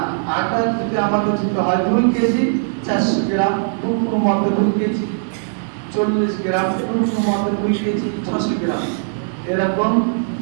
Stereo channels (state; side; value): silent; left; digital silence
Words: আটা যদি আমাদের যদি হয় 2 কেজি 400 গ্রাম, কোনো মতে 2 কেজি 40 গ্রাম, কোনো মতে 2 কেজি 600 গ্রাম, এরকম